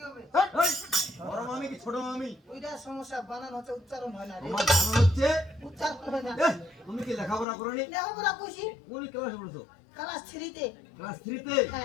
হবে এই বড় মামি কি ছোট মামি? ওইটা সমস্যা বানান হচ্ছে উচ্চারণ হয় না রে আমার জানা হচ্ছে উচ্চারণ হয় না এ তুমি কি লেখাপড়া করনি? লেখাপড়া কইছি কোন ক্লাসে পড়ছো? ক্লাস 3 তে ক্লাস 3 তে?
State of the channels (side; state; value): right; drops out; at 7.5 s